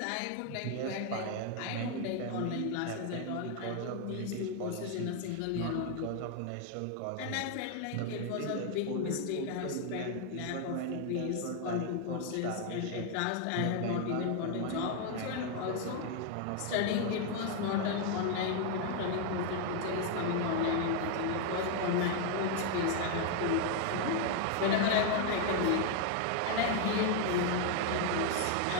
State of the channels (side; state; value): both; different; correlation 0.00